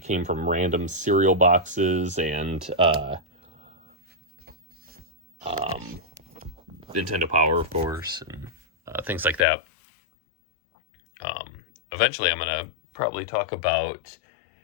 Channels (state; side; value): drops out; right; at 9.5 s